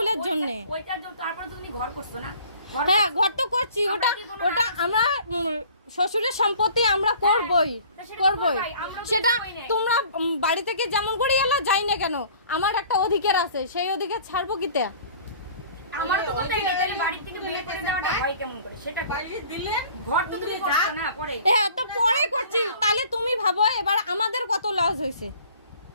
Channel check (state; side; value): inverted; both; correlation -0.50